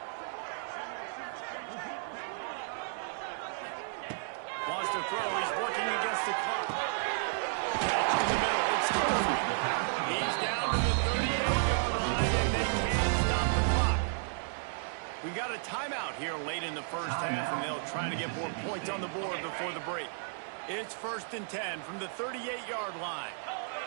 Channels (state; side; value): silent; left; digital silence